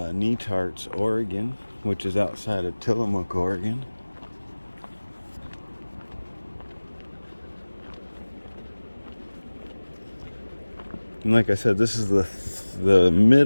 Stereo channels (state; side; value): inverted; both; correlation -1.00